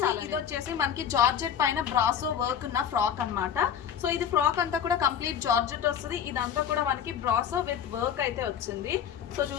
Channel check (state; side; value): quieter; right; 8.7 dB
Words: చాలా. ఇది వచ్చేసి మనకి జార్జెట్ పైన బ్రాసో వర్క్ ఉన్న ఫ్రాక్ అన్నమాట. సో ఇది ఫ్రాక్ అంతా కూడా కంప్లీట్ జార్జెట్ వస్తుంది. ఇదంతా కూడా మనకి బ్రాసో విత్ వర్క్ అయితే వచ్చింది. సో